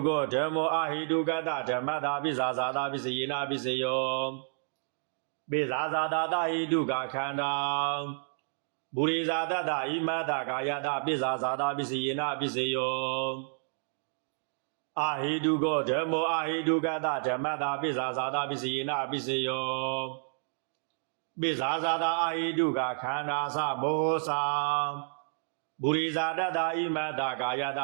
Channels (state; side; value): silent; left; digital silence